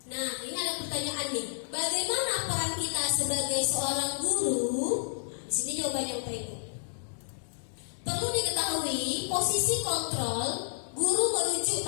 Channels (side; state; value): right; silent; digital silence